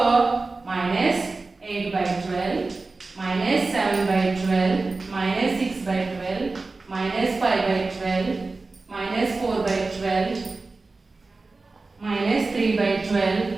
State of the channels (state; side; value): quieter; left; 3.6 dB